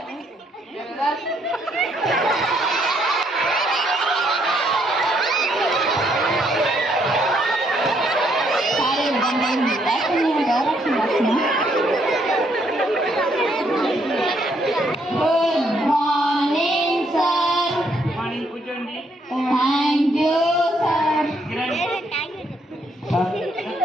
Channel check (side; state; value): both; normal; correlation 0.71